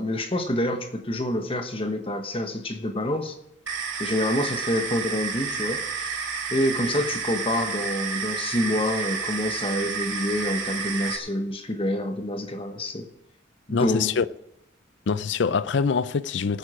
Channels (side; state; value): both; normal; correlation 0.40